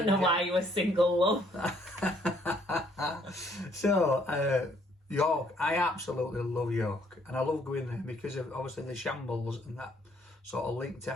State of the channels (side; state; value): both; normal; correlation 0.66